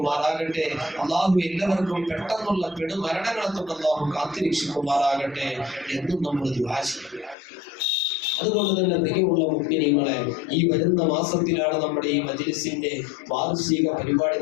അല്ലാഹു എല്ലാവർക്കും പെട്ടെന്നുള്ള പെടുമരണങ്ങളെ തൊട്ട് അല്ലാഹു കാത്തിരക്ഷിക്കുമാറാകട്ടെ എന്നും നമ്മൾ ദുആ ചെയ്യും. അതുകൊണ്ട് തന്നെ പ്രിയമുള്ള മുഅ്മിനീങ്ങളെ, ഈ വരുന്ന മാസത്തിലാണ് നമ്മുടെ ഈ മജ്‌ലിസിന്റെ വാർഷിക പരിപാടി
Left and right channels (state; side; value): drops out; right; at 7.4 s